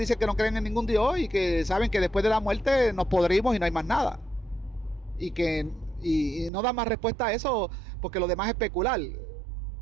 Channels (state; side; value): drops out; left; at 6.5 s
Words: que no creen en ningún Dios y que saben que después de la muerte nos podrimos y no hay más nada. Y no dan más respuesta a eso porque lo demás es especular.